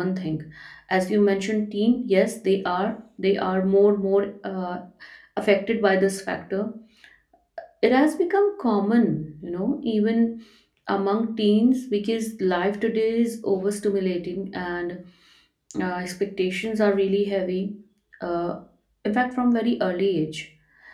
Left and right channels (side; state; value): both; identical; correlation 1.00